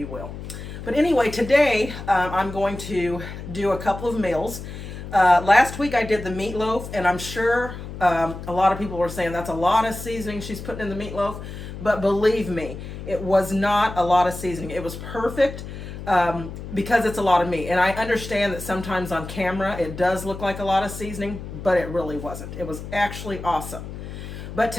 will. But anyway, today I'm going to do a couple of meals. Last week I did the meatloaf, and I'm sure a lot of people were saying that's a lot of seasoning she's putting in the meatloaf, but believe me, it was not a lot of seasoning. It was perfect. Because it's a lot of meat. And I understand that sometimes on camera it does look like a lot of seasoning, but it really wasn't. It was actually awesome. But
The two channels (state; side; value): noise; left; hum, 10 dB below the sound